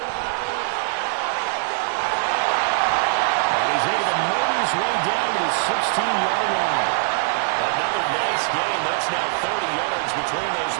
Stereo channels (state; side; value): silent; left; 64 dB below the other